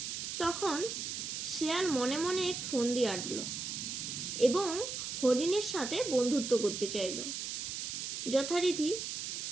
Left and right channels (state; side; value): noise; right; hiss, 4 dB below the sound